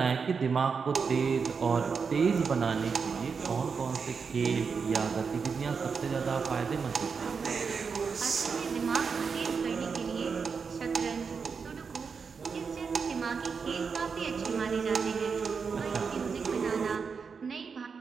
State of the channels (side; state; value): left; quieter; 5.6 dB